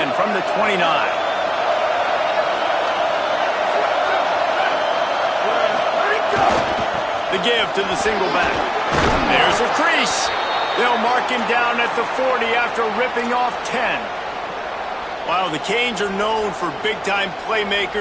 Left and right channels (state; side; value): identical; both; correlation 1.00